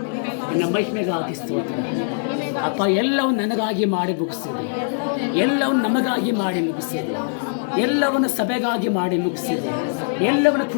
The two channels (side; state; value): right; silent; digital silence